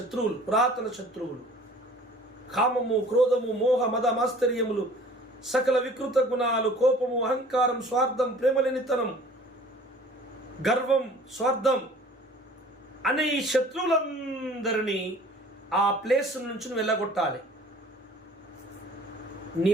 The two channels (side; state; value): both; normal; correlation 0.49